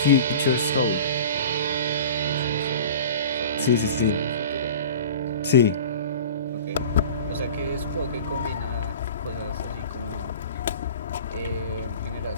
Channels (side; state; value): both; inverted; correlation -0.39